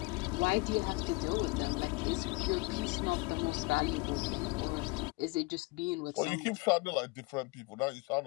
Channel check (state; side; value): quieter; right; 25.8 dB